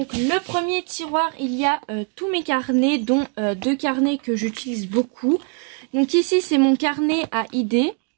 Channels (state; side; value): quieter; left; 39.9 dB